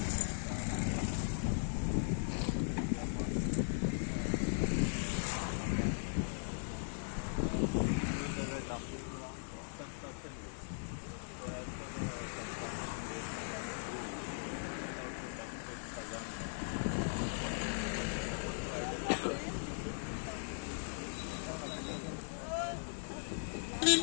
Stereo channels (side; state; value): right; silent; 52 dB below the other